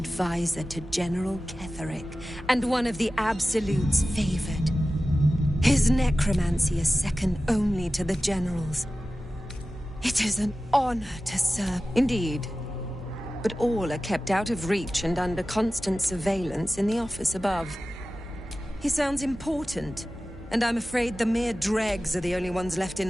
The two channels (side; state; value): both; normal; correlation 0.95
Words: to General Ketherick, and one of the Absolute's favored. His necromancy is second only to the General's. It is an honor to serve. Indeed. But all are kept out of reach and under constant surveillance in the office above. He sounds important, and I'm afraid the mere dregs are the only ones left